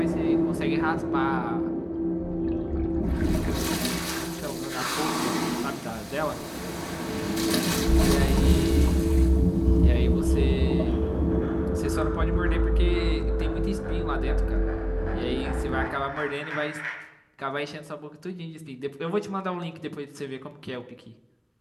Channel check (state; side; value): identical; both; correlation 1.00